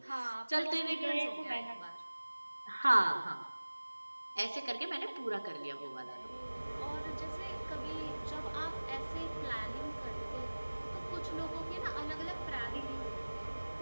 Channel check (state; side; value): inverted; both; correlation -1.00